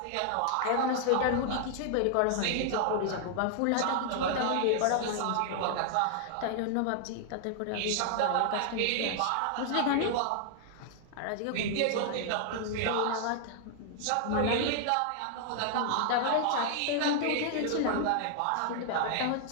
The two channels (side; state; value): both; different; correlation 0.00